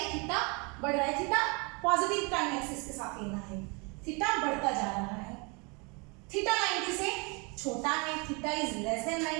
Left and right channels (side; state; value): left; quieter; 30.9 dB